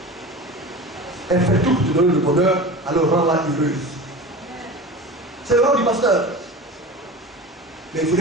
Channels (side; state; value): both; normal; correlation 0.33